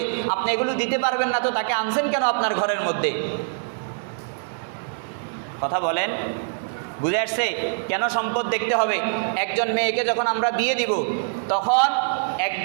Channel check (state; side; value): silent; left; digital silence